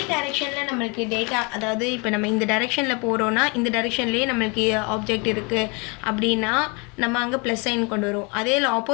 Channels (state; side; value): quieter; right; 31.0 dB